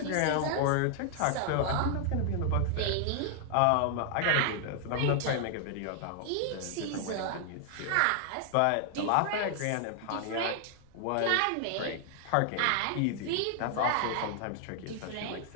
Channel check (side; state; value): both; different; correlation 0.00